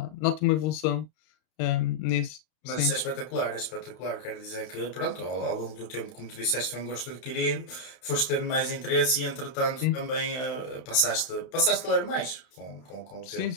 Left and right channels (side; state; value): right; late; 31 ms